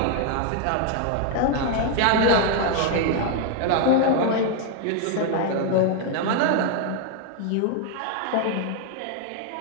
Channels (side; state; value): both; different; correlation 0.00